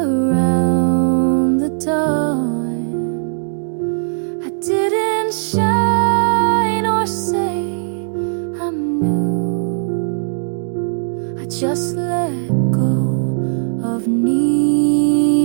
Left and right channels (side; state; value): left; silent; digital silence